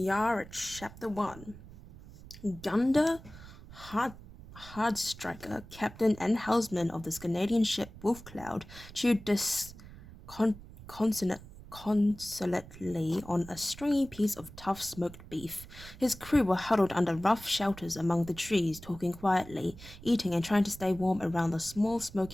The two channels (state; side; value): noise; right; rumble, 17 dB below the sound